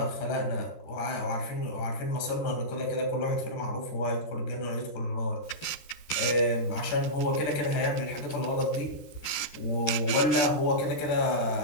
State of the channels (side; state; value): right; late; 13 ms